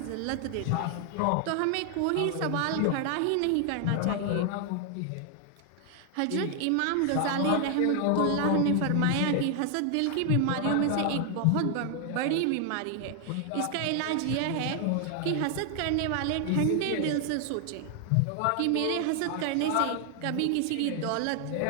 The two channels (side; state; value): both; different; correlation 0.00